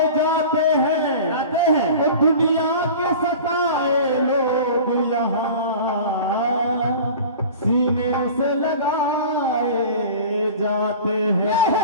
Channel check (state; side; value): inverted; both; correlation -0.39